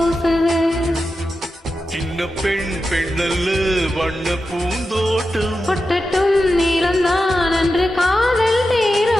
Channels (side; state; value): both; normal; correlation 0.91